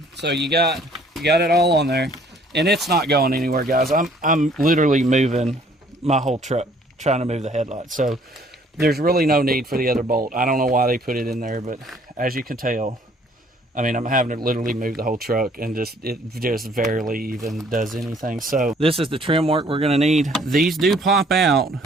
so you got it all on there, and it's not going anywhere, guys. I'm literally moving my whole truck trying to move the headlight, so there's really no need for the other bolt. I don't know why they put it in there, but as you can tell, I mean, I'm having to literally move the whole truck, and it just barely even does anything. So this is the trim work we're going to need. These do pop out,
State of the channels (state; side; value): normal; both; correlation 0.59